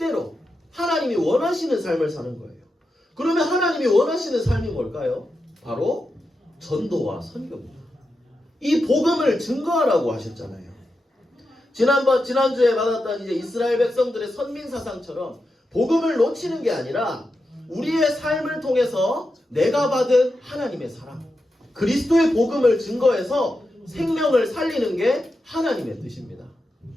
하나님이 원하시는 삶을 사는 거예요. 그러면 하나님이 원하시는 삶이 뭘까요? 바로 전도와 선교입니다. 이 복음을 증거하라고 하셨잖아요. 지난주에 받았던 이제 이스라엘 백성들의 선민사상처럼 복음을 놓치는 게 아니라 우리의 삶을 통해서 내가 받은 하나님의 사랑, 그리스도의 복음을 증거해서 생명을 살리는 게 하나님의 뜻입니다.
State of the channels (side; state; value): both; normal; correlation 0.88